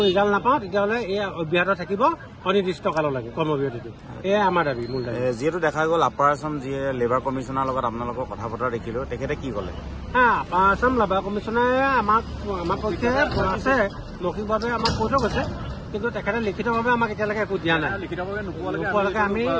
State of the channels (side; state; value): both; identical; correlation 1.00